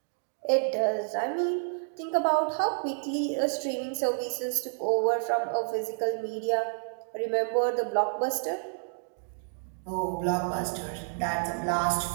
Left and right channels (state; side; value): silent; left; digital silence